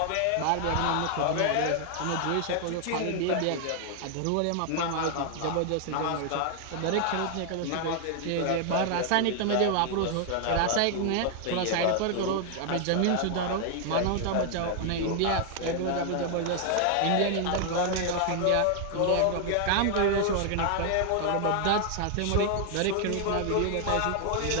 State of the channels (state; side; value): different; both; correlation 0.00